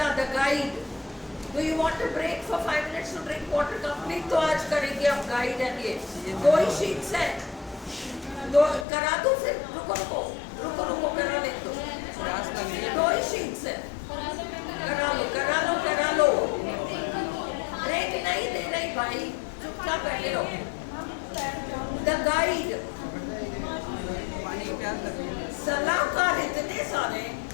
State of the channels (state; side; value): drops out; right; at 8.8 s